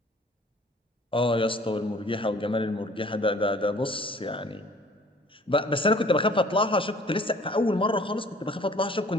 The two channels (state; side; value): normal; both; correlation 0.53